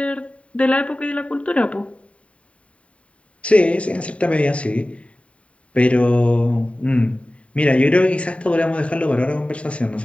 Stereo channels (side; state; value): right; late; 0.063 ms